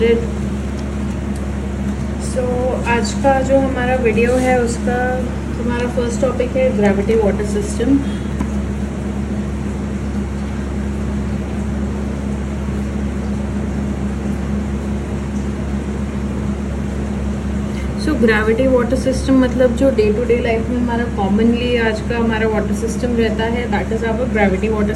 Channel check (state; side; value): identical; both; correlation 1.00